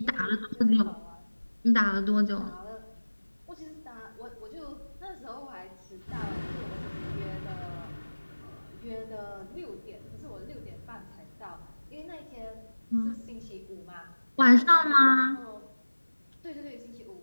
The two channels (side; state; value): both; inverted; correlation -1.00